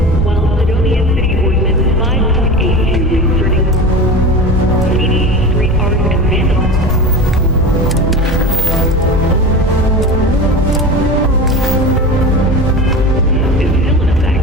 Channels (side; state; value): both; normal; correlation 0.30